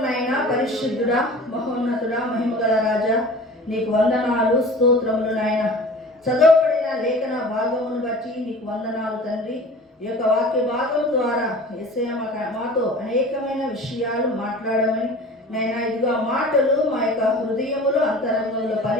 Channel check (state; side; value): normal; both; correlation 0.41